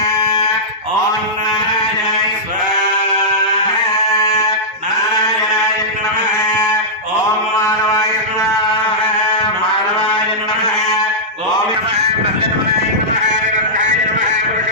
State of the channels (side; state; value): both; normal; correlation -0.12